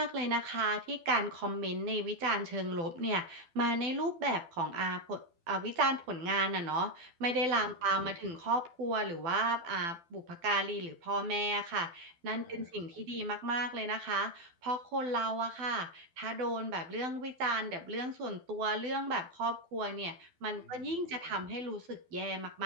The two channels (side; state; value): left; late; 12 ms